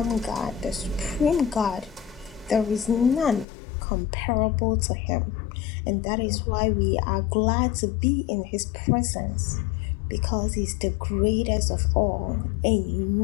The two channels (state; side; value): drops out; right; at 3.5 s